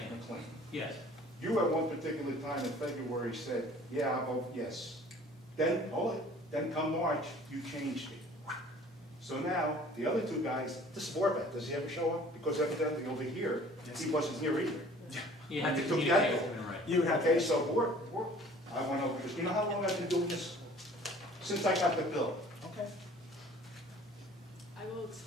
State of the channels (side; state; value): both; normal; correlation 0.50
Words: McLean. Yes. You at one particular time in February said, yeah, I'll vote yes. Then, then come March, you changed it. So now, the other two guys, this is Warbeck, does he ever show up? Because evidently over here, he wasn't here either. You have to You took communicate that with him, right? You would have Okay, to, so I went over this, you know how long I've been doing this? Since I got the bill. okay. I will